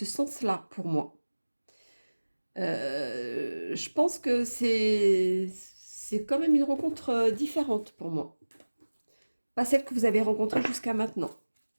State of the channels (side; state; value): both; inverted; correlation -1.00